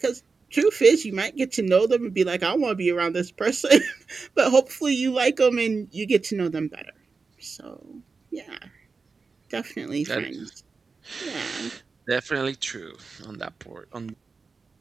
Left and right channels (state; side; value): quieter; left; 4.5 dB